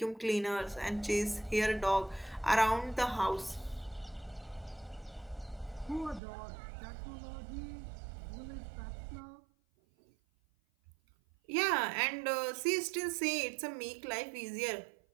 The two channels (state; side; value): drops out; left; at 6.2 s